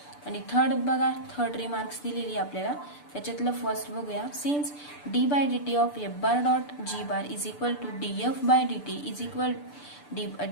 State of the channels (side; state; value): right; late; 6.8 ms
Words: आणि third remarks दिलेली आपल्याला त्याच्यातलं फर्स्ट बघूया since D by D T of F bar dot G bar is equal to d f by D T is equal